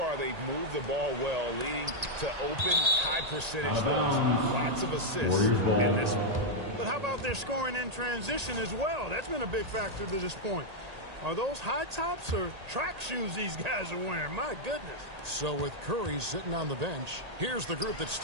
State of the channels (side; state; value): left; late; 1.8 ms